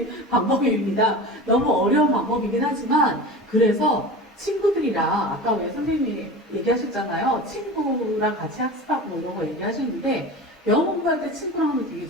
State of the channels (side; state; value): both; normal; correlation 0.32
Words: 방법입니다. 너무 어려운 방법이긴 하지만 그래서 친구들이랑 아까 왜 선생님이 얘기하셨잖아요. 친구랑 같이 학습하고 이런 거 얘기하시는데 영어 공부할 때 친구랑 하면 되게